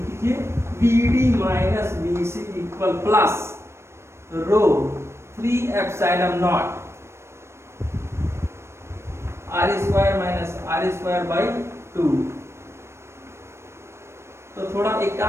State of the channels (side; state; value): left; late; 0.13 ms